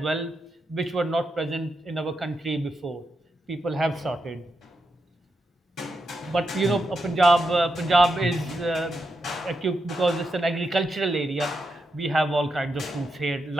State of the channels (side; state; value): both; normal; correlation 0.85